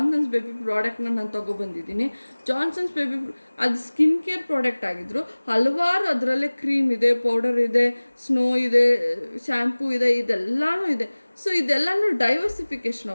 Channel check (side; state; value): both; inverted; correlation -1.00